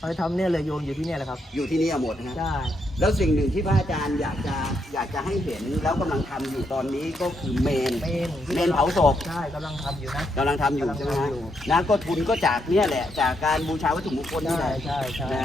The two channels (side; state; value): both; normal; correlation 0.78